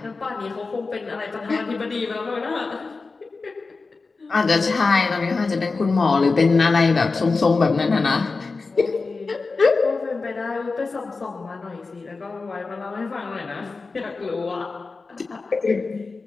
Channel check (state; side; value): quieter; right; 4.0 dB